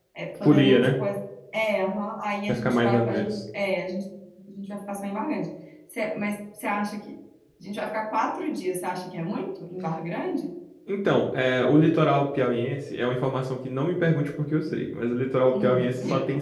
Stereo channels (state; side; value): identical; both; correlation 1.00